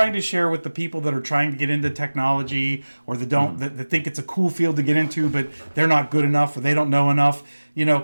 to share with the people that are trying to get into technology, or that think it's a cool field to get into, but they're not good enough or they don't know enough,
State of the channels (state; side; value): inverted; both; correlation -1.00